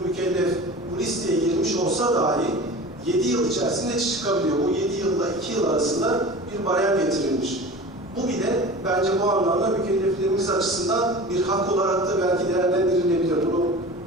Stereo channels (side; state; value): both; normal; correlation 0.36